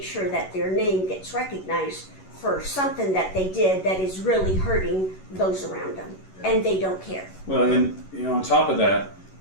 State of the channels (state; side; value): late; right; 11 ms